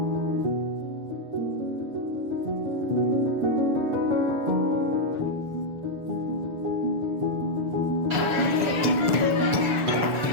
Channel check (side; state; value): left; late; 6.9 ms